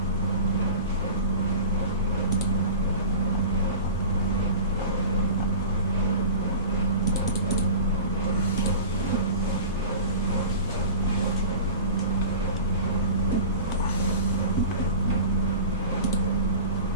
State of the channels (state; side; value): inverted; both; correlation -0.34